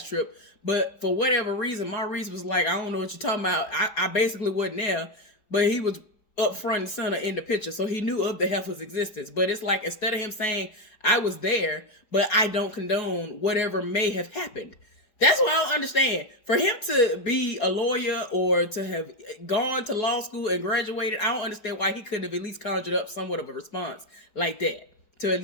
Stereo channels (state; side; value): late; right; 4.7 ms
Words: trip. But for whatever reason, Maurice was like, I don't know what you're talking about. I basically wasn't there, but he was up front and center in the picture. So he knew of the heifer's existence. But it's like, instead of him saying, I was there, but I don't condone whatever may have happened. That's what I don't understand. For him to be a lawyer or to have gone to law school and graduated, I don't understand why he couldn't have at least conjured up somewhat of a response like that. To at